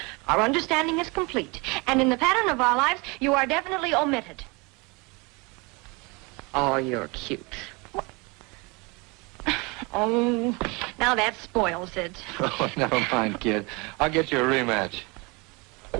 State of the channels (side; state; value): left; quieter; 27.8 dB